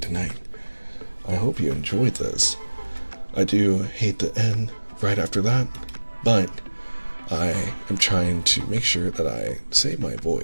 I hope you enjoyed this. I do hate to end right after that, but I am trying to make sure that I save my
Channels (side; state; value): both; inverted; correlation -1.00